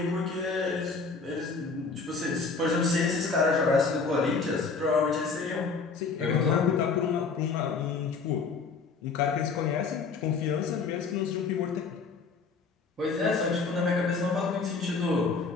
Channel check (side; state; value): right; quieter; 4.7 dB